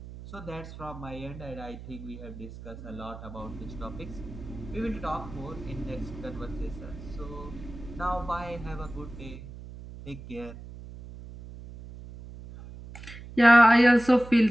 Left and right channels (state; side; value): noise; right; hum, 14 dB below the sound